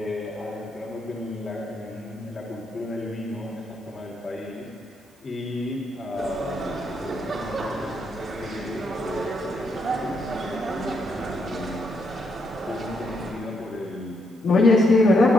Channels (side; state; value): both; normal; correlation 0.77